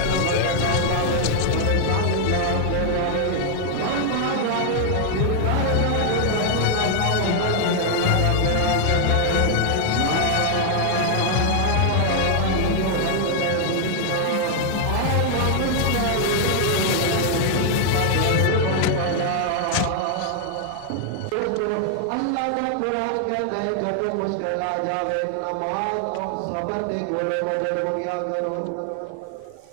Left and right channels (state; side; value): different; both; correlation 0.00